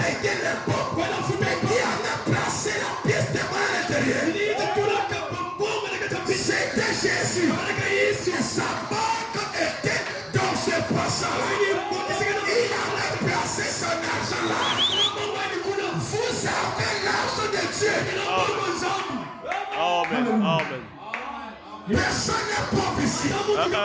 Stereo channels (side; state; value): both; identical; correlation 1.00